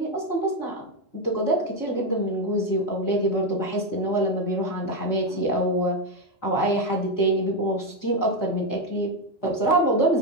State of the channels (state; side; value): late; right; 4.3 ms